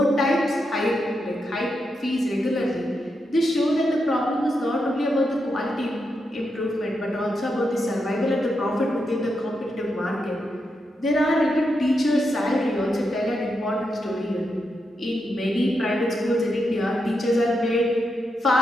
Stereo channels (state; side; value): normal; both; correlation 0.84